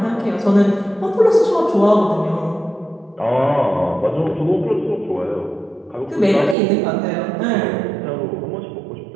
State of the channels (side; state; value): left; drops out; at 6.6 s